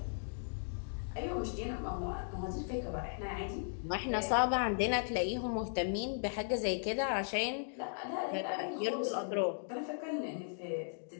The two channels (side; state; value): right; silent; digital silence